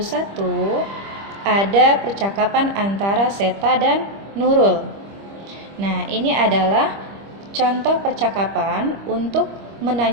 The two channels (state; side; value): late; left; 25 ms